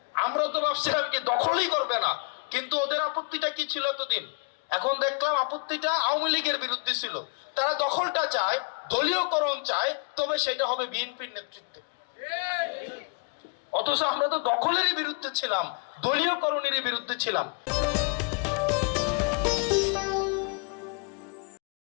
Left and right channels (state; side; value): quieter; right; 35.5 dB